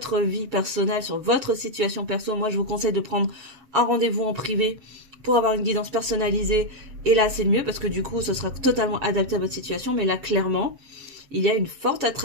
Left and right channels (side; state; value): left; late; 7.2 ms